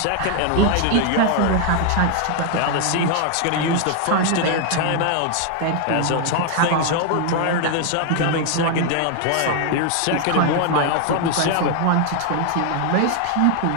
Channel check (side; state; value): both; different; correlation 0.00